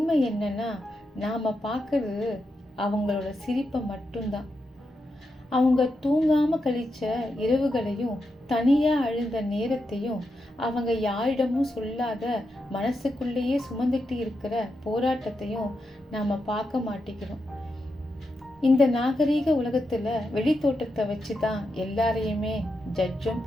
என்னன்னா, நாம் பார்க்கறது அவங்களோட சிரிப்பை மட்டும்தான். அவங்க தூங்காமல் கழிச்ச இரவுகளையும், தனியாக அழுத நேரத்தையும், அவங்க யாரிடமும் சொல்லாத மனசுக்குள்ளேயே சுமந்துட்டு இருக்கிற போராட்டத்தையும் நாம் பார்க்க மாட்டேங்கிறோம். இந்த நாகரீக உலகத்தில் வெளித்தோட்டத்தை வச்சு தான் எல்லாரையுமே ஜட்ஜும்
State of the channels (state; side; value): normal; both; correlation 0.86